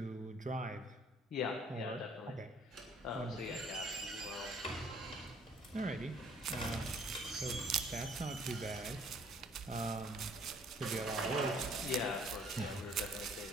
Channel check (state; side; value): normal; both; correlation 0.59